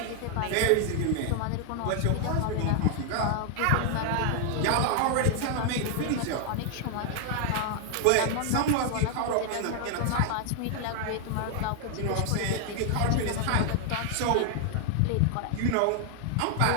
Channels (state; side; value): different; both; correlation 0.00